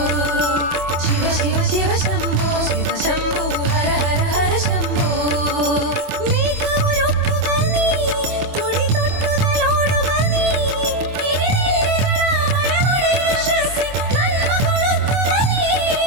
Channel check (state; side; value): late; left; 24 ms